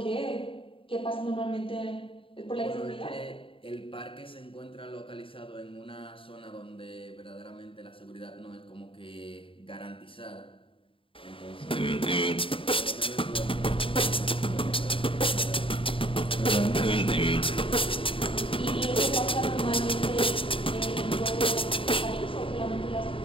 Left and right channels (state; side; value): late; right; 0.26 ms